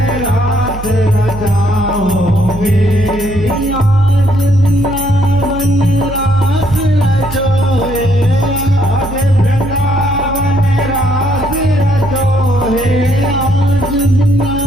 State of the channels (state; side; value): noise; right; hum, 10 dB below the sound